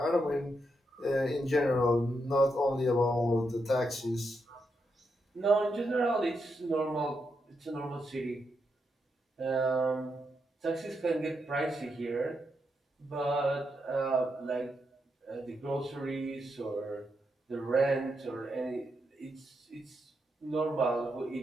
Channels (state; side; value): normal; both; correlation 0.82